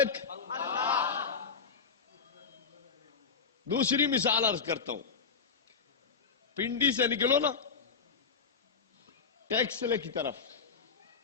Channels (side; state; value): right; quieter; 5.5 dB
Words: دوسری مثال عرض کرتا ہوں. پنڈی سے نکلو نا ٹیکسلے کی طرف،